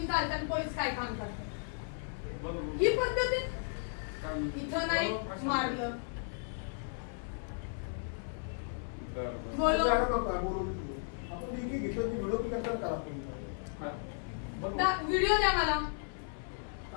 चालतात पोलीस काय काम करतात ही पद्धत इथं नाही मारलं व्हिडिओ द्या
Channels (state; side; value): silent; right; 54 dB below the other